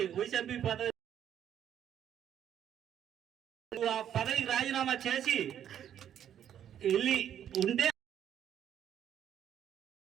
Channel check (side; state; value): left; quieter; 9.9 dB